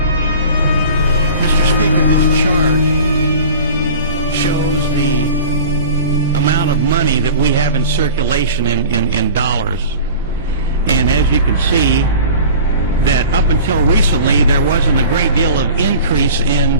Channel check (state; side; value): inverted; both; correlation -0.38